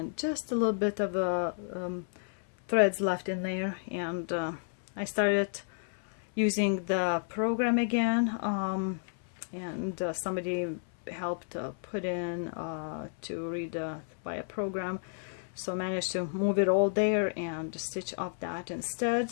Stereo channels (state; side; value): silent; right; 57 dB below the other